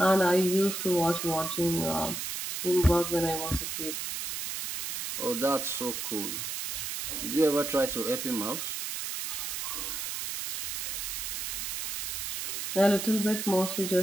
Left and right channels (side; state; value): right; noise; hiss, 4 dB below the sound